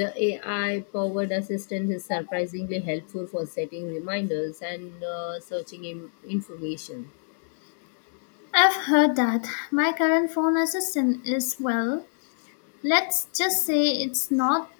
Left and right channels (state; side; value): silent; right; digital silence